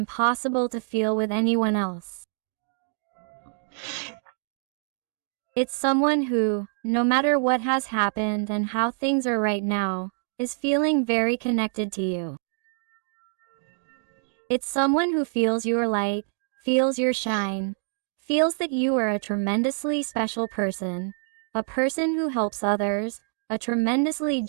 to feel with anyone else. It's someone who, no matter what has happened and how things are right now, is feeling very connected to you. It's someone who feels your light, feels your shine, feels that you are a tremendously special person, a person who helps others, a tremendously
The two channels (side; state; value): left; silent; digital silence